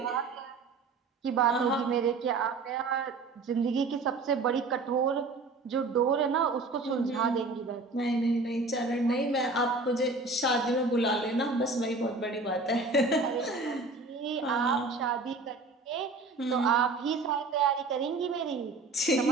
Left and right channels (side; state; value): left; quieter; 3.6 dB